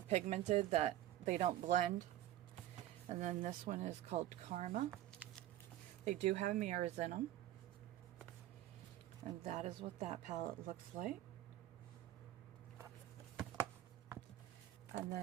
pigmented that they don't blend. And then this one is called Karma. They do have mirrors in them. And that is what that palette looks like. And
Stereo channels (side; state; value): left; quieter; 13.5 dB